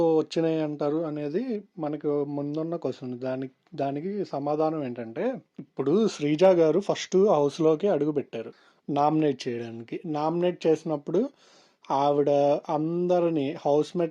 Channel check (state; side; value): identical; both; correlation 1.00